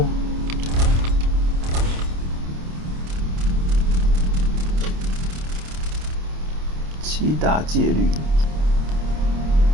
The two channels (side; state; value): left; late; 27 ms